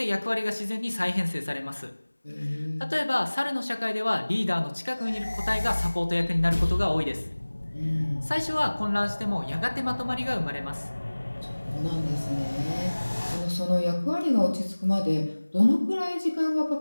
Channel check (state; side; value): inverted; both; correlation -1.00